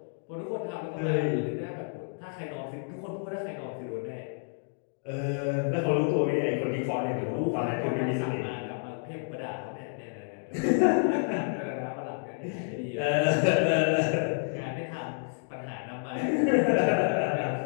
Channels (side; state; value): right; silent; digital silence